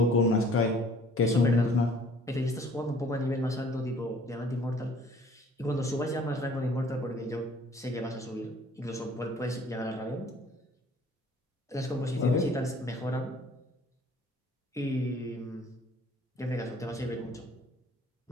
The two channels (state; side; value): normal; both; correlation 0.54